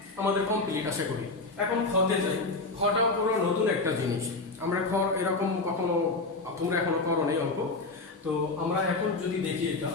আমাদের কমপ্লিট আশা করি। এখন খতে যাই, খটা পুরো নতুন একটা জিনিস, আমরা খ এরকম কখনো তোমরা এখনো করো নাই অঙ্ক। তো আমরা এখন যদি দেখি এটা,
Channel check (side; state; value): right; quieter; 3.4 dB